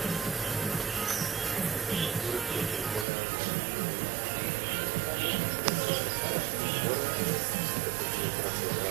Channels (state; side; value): drops out; left; at 3.1 s